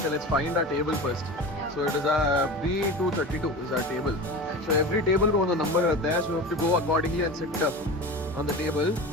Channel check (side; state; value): both; normal; correlation 0.31